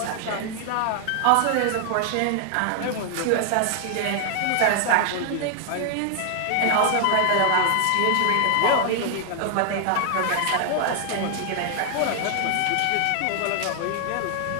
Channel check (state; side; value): different; both; correlation 0.00